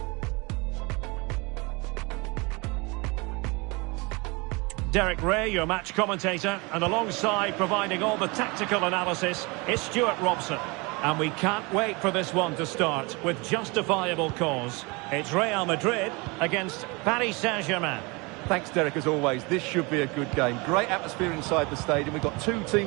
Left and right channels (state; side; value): quieter; left; 27.2 dB